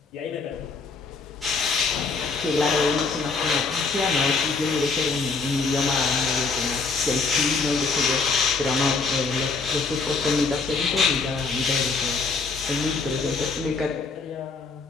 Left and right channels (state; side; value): quieter; right; 4.4 dB